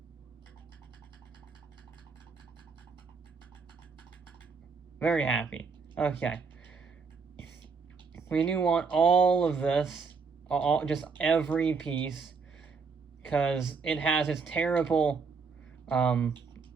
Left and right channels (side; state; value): left; quieter; 5.0 dB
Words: Very happy. Okay. We do want all of this, just every piece, because it has its terrible